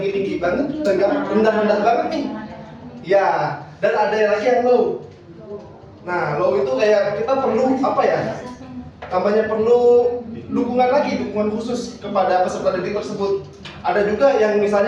banget, nggak rendah-rendah banget nih. Ya, dan ada yang lagi yang low. Nah, low itu kayak kita perlu Tambahnya perlu dukungan khusus kepada peserta didik tersebut. Ada juga yang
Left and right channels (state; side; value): identical; both; correlation 1.00